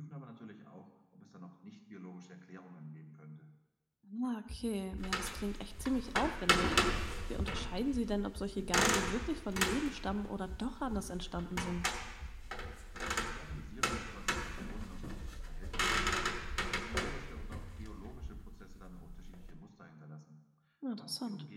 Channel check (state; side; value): identical; both; correlation 1.00